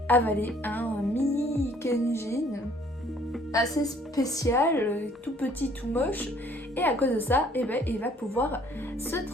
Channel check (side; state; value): both; normal; correlation 0.60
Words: avaler un mini Kenjin assez spécial, tout petit, tout moche, et à cause de ça, il va pouvoir se